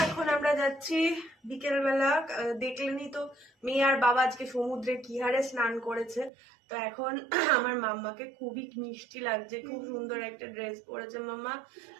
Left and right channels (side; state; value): left; drops out; at 6.3 s